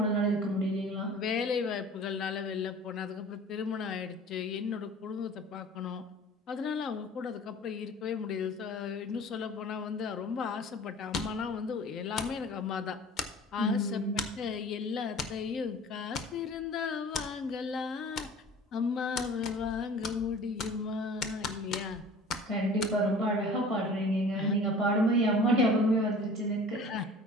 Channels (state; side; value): normal; both; correlation 0.44